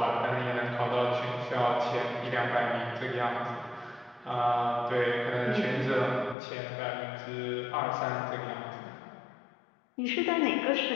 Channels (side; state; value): right; drops out; at 6.4 s